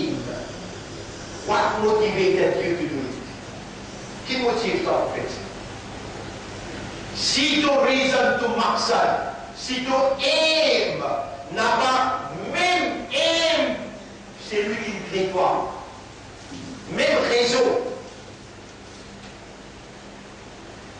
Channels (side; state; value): both; identical; correlation 1.00